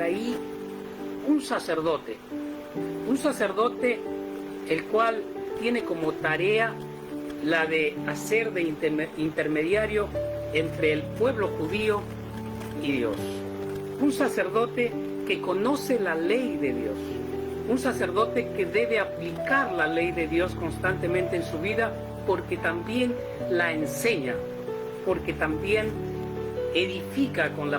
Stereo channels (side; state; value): both; identical; correlation 1.00